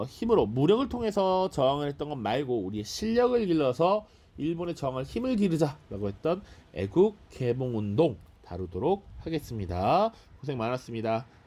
힘으로 무력을 통해서 저항을 했던 것 말고 우리의 실력을 길러서 일본에 저항할 힘을 기르자라고 했던 애국 개봉운동 다루도록 하겠습니다. 고생 많았습니다.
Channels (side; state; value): both; identical; correlation 1.00